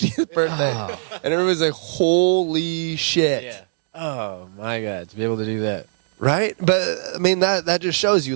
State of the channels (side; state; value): left; silent; digital silence